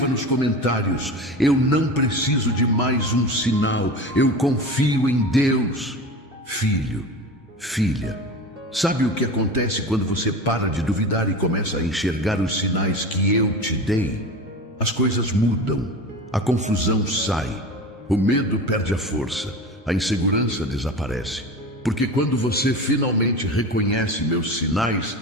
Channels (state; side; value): normal; both; correlation 0.31